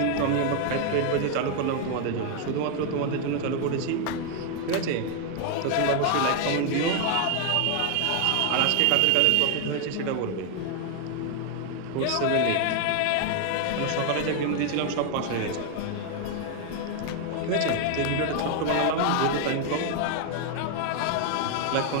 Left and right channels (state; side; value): different; both; correlation 0.01